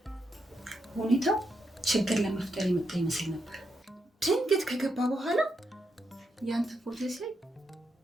ሁኔታው ችግር ለመፍጠር የመጣ ይመስል ነበር። ድንገት ከገባ በኋላ ያንተ ፎቶ ሲያይ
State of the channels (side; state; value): both; normal; correlation 0.82